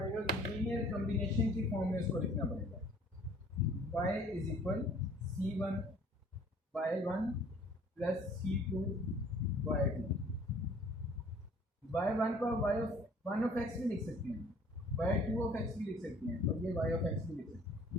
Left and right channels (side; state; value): both; normal; correlation 0.54